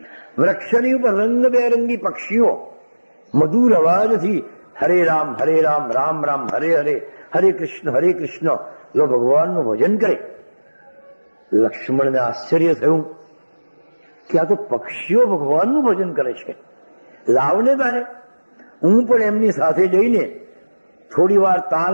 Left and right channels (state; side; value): inverted; both; correlation -1.00